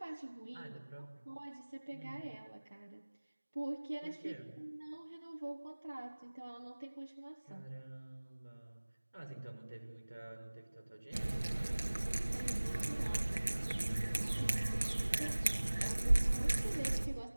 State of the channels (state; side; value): inverted; both; correlation -1.00